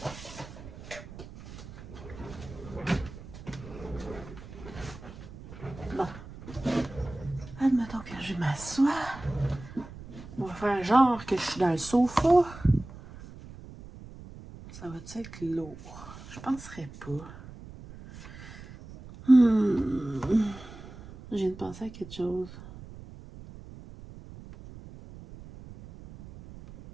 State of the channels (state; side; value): noise; right; rumble, 15 dB below the sound